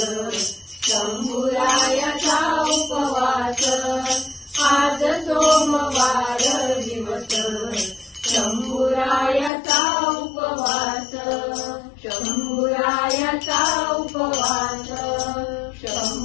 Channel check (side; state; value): right; drops out; at 9.5 s